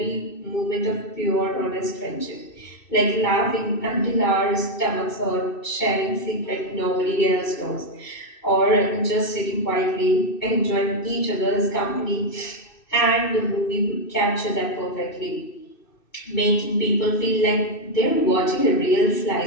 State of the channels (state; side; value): late; right; 2.6 ms